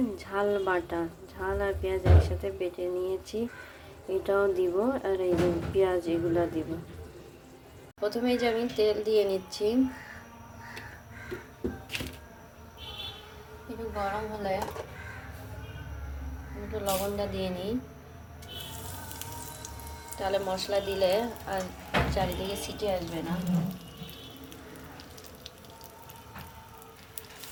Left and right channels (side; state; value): both; identical; correlation 1.00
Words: ঝাল বাটা, ঝাল আর পেঁয়াজ একসাথে বেটে নিয়েছি, এটাও দিব। আর এই যে পেঁয়াজ, এগুলো দিব। প্রথমে যে আমি তেল দিয়ে নিচ্ছি, একটু গরম হলে একটু লবণটা দিয়ে নিই, তাহলে মশলা দিলে আর চারিদিকে সিটি আসবে না।